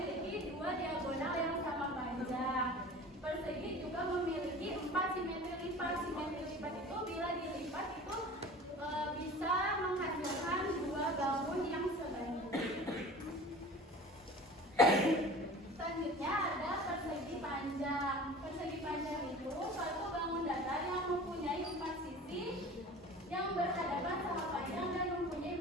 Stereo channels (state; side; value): normal; both; correlation 0.39